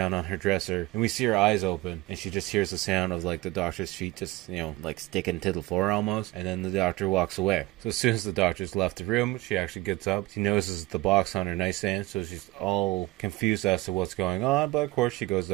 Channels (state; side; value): quieter; left; 19.6 dB